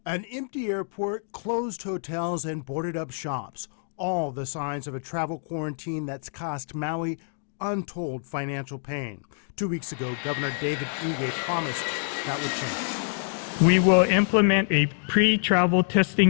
An empty airport, closed hotels, and boarded up shops. All the signs of a travel quarantine that's cost Maui untold financial pain. 2 weeks ago, Governor David Ige promised that would change. We will implement a pre-travel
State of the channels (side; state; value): right; silent; digital silence